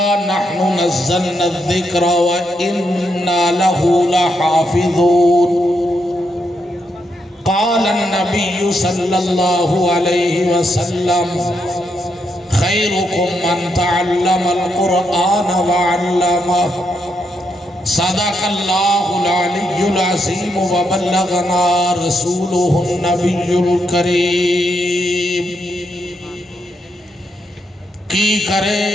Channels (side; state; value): both; normal; correlation 0.80